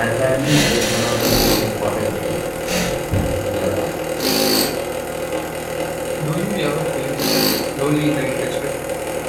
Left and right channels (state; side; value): identical; both; correlation 1.00